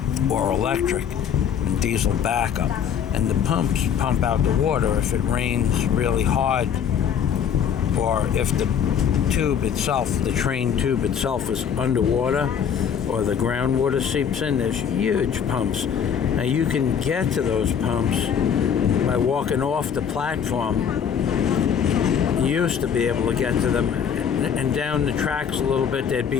or electric and diesel backup. And the pumps pump out the water if it rains really hard, or if the tube itself, the train tube itself, is underwater, or the groundwater seeps in. There's huge pumps. Now you can get to those pumps by walking off the platform. You used to be able to get to them, and down the tracks a little bit there'd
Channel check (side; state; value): right; quieter; 7.9 dB